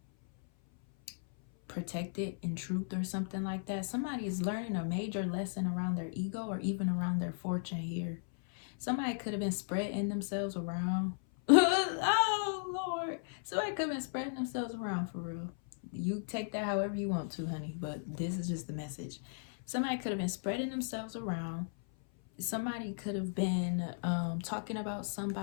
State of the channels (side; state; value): right; silent; 54 dB below the other